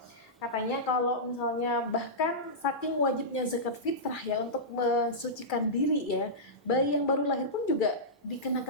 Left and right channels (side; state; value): both; normal; correlation -0.14